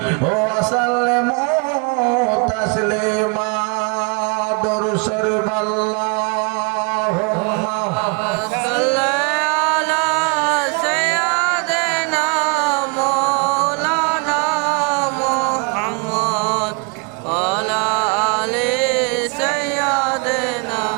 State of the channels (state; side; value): quieter; left; 35.2 dB